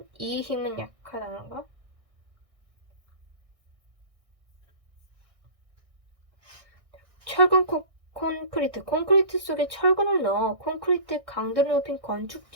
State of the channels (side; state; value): left; late; 1.6 ms